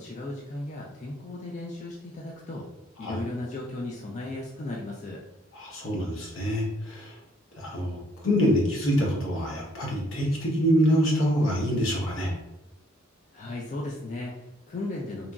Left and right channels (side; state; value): both; normal; correlation 0.66